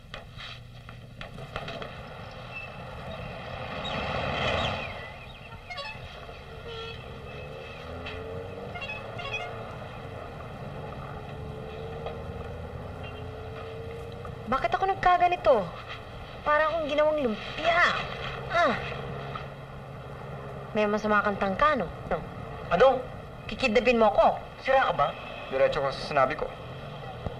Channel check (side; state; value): both; identical; correlation 1.00